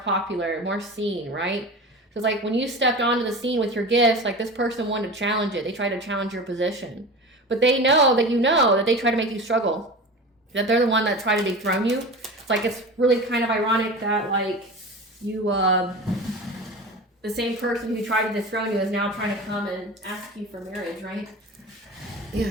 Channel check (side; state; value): both; normal; correlation 0.32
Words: more seen, right? So it's like when you stepped onto the scene with your gifts, like this person wanted to challenge it. They tried to challenge your position. But they know that you know that they try to make you struggle. That they're the one that tried to dethrone you. It's like it's really kind of ironic that like you the same person who tried to dethrone you is now trying to come and ask you for marriage, right?